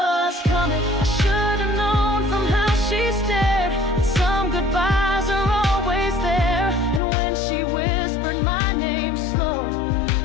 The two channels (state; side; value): drops out; right; at 7.0 s